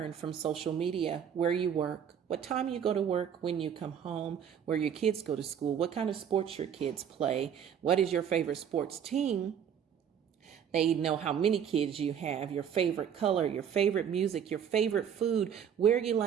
from social media where you work, what time you go to work, when you come home, where your kids go to school, what kind of sports your kids play, what is your favorite sports team. They know how many kids you have, your favorite color, your favorite music, your favorite food, where you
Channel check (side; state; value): left; quieter; 8.4 dB